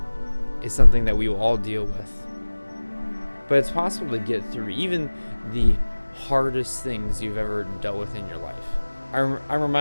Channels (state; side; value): inverted; both; correlation -1.00